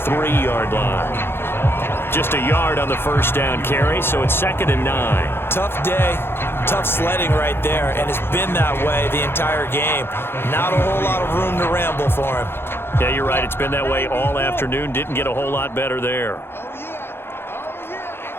line. Just a yard on the first down carry, so it's 2nd and 9. Tough day, tough sledding right there, and it's been that way the entire game. Not a whole lot of room to ramble for him. Yeah, you're right. It's been that way all afternoon. Didn't get a whole lot better there.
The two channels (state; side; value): late; right; 0.11 ms